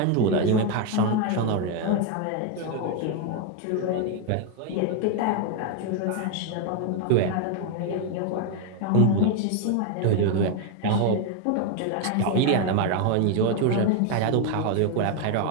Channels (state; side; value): different; both; correlation 0.01